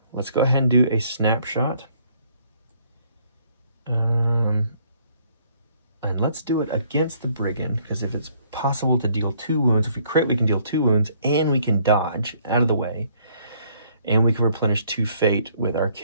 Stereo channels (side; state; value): both; inverted; correlation -0.64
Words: Let's go ahead and do a snapshot. And let's do it against the Brigand, because if it's possible to deal 2 wounds, if we crit, we can deal 2 wounds, and we can dodge out of the way. And we can replenish 2 fate with our